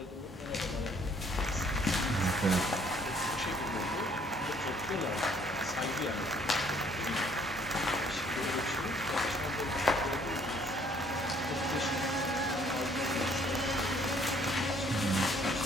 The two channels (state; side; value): normal; both; correlation 0.61